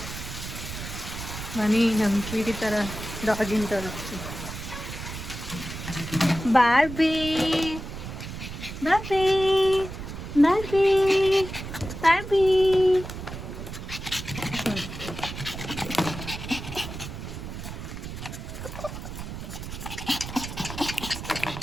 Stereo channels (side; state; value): right; noise; rumble, 9 dB below the sound